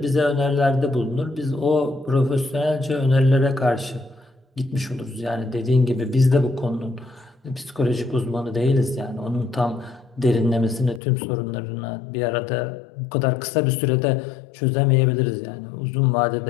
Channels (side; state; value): right; drops out; at 11.0 s